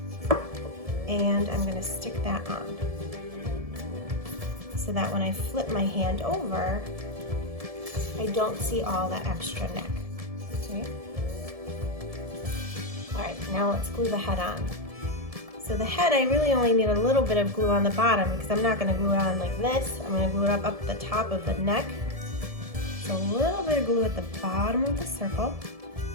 And I'm going to stick that on so that when I flip my hand over, I don't see all that extra neck. Okay. All right, now let's glue the head on. So the head, I really only need a little bit of glue on the bottom because I'm not going to glue it on like this. I'm going to glue it up the top of the neck. So a little bit of glue at the bottom of the circle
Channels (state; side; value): late; left; 1.7 ms